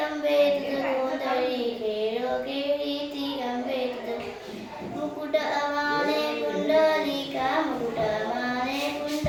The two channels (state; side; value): identical; both; correlation 1.00